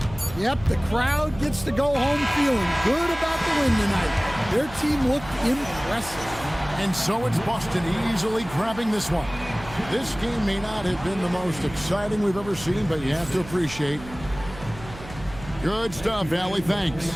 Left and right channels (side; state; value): right; noise; hum, 15 dB below the sound